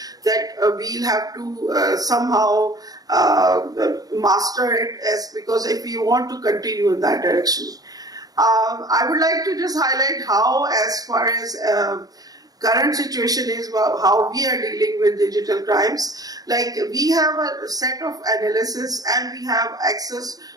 that we'll have to somehow master it, because if we want to continue in that direction. I would like to just highlight how, as far as current situation is, how we are dealing with digital crimes. Like, we have a set of analysis and we have access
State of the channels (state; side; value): late; left; 0.18 ms